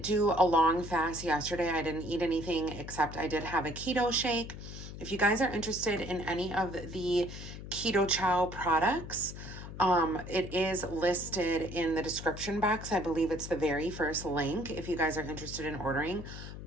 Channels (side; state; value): left; noise; hum, 11 dB below the sound